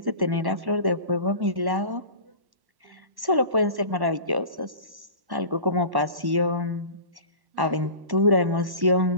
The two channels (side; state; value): left; late; 1.1 ms